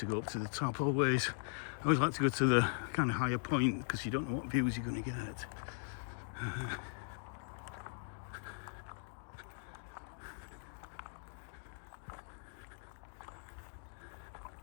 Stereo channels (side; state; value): right; silent; digital silence